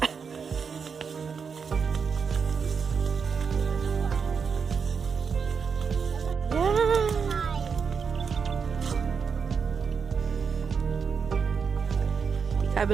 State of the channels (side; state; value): left; quieter; 5.9 dB